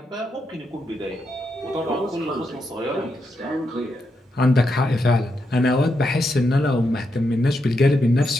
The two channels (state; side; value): normal; both; correlation 0.83